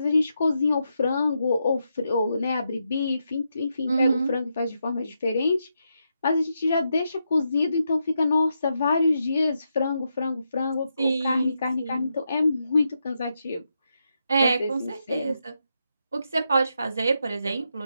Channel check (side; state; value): both; inverted; correlation -0.83